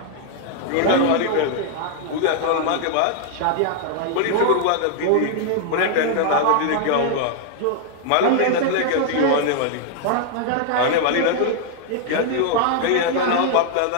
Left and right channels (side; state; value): both; different; correlation 0.00